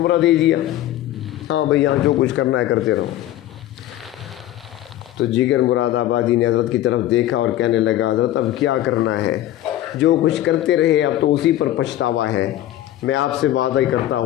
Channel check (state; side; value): quieter; right; 13.7 dB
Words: دے دیا، ہاں بھئی یہاں جو کچھ کرنا ہے کرتے رہو۔ تو جگر مراد آبادی نے حضرت کی طرف دیکھا اور کہنے لگا حضرت اب کیا کرنا ہے، جو کچھ کرتے رہے اب تو اسی پر پچھتاوا ہے، میں آپ سے وعدہ ہی کرتا